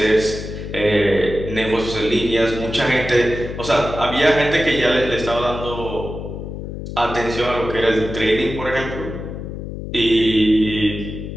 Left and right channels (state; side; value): noise; left; hum, 8 dB below the sound